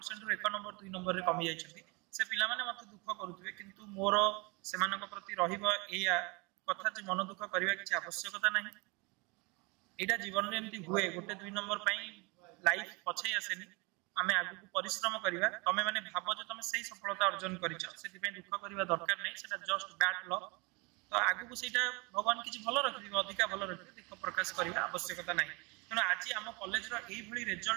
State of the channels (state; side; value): quieter; left; 28.1 dB